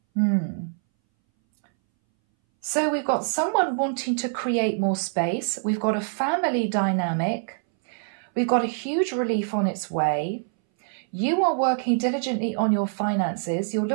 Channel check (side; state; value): left; silent; 61 dB below the other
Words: So we've got someone wanting to create more space. We've got a family dynamic. We've got a huge relief on its way. You are working diligently on your finances. You're